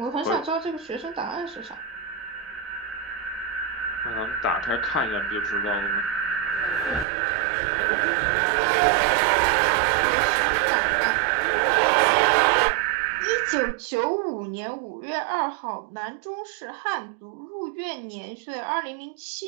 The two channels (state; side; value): drops out; left; at 7.1 s